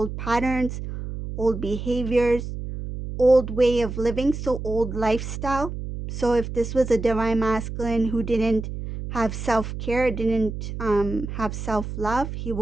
patterns, old behaviors, old way of living, so old lifestyle. So if this was a divine masculine who didn't have self-care, didn't have self-love, he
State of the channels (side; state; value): right; noise; hum, 7 dB below the sound